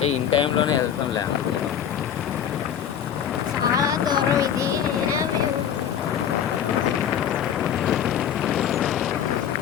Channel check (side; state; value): right; quieter; 9.1 dB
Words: ఇన్ టైంలోనే వెళ్తాంలే అనుకున్నాం. చాలా దూరం ఇది. అయినా మేము